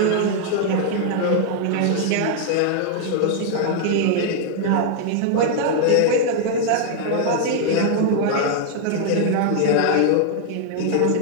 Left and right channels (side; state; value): both; different; correlation 0.00